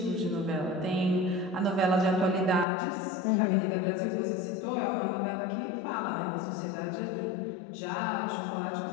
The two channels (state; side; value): drops out; right; at 2.7 s